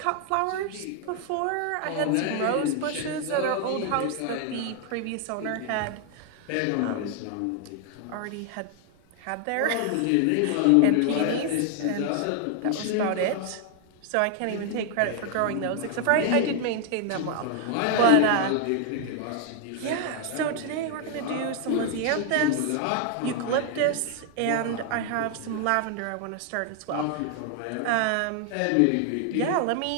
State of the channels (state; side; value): different; both; correlation 0.00